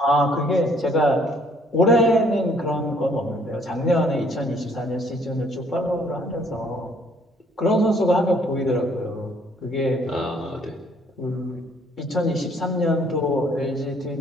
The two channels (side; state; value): both; normal; correlation 0.62